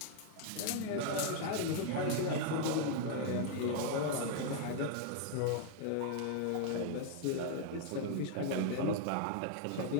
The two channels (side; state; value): both; different; correlation 0.00